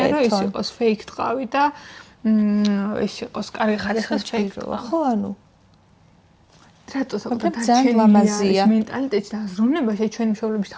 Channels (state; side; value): identical; both; correlation 1.00